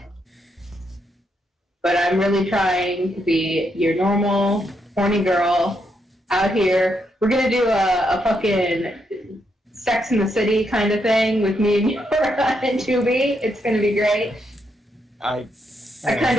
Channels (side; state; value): both; normal; correlation 0.79